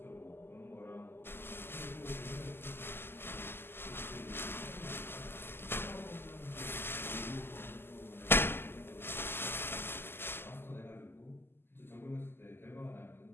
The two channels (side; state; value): right; late; 0.11 ms